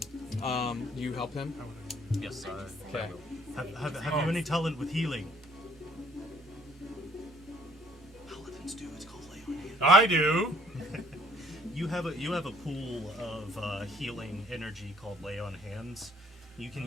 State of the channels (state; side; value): normal; both; correlation 0.60